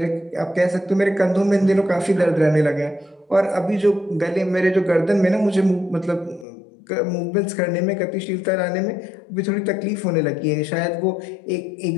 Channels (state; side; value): drops out; right; at 6.5 s